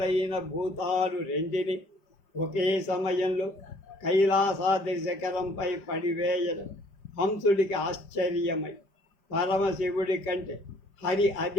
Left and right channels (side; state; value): right; late; 5.1 ms